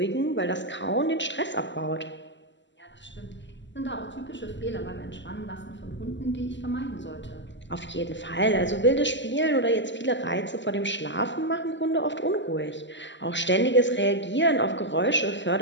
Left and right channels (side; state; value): right; late; 0.53 ms